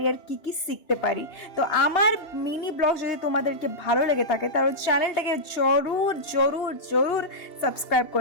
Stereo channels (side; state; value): right; late; 2.9 ms